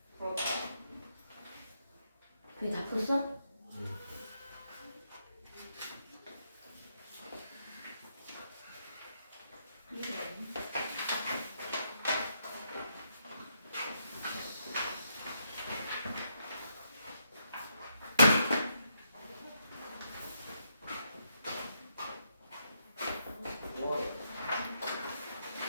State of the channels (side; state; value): both; inverted; correlation -0.78